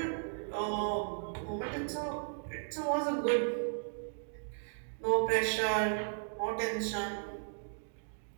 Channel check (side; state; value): left; silent; digital silence